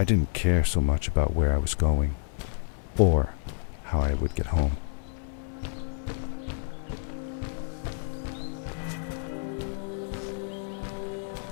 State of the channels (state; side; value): silent; right; digital silence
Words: didn't care so much about where I was going, or how I would get home.